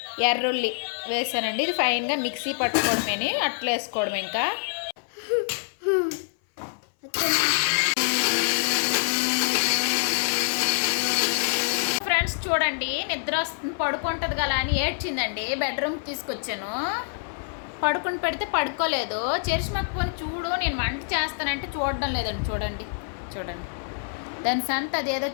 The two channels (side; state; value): right; silent; 59 dB below the other